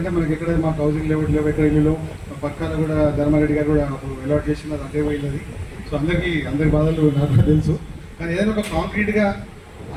మనకి ఎక్కడ మాకు హౌసింగ్ లేఅవుట్ లేవు, ఎక్కడ ఇల్లు పక్కన కూడా ధర్మారెడ్డి గారు కూడా అలాట్ చేసిన అదే పోయింది. సో అందరి బాధలు నాకు తెలుసు. కానీ ఏదైనా ఒక కాంక్రీట్గా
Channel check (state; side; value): identical; both; correlation 1.00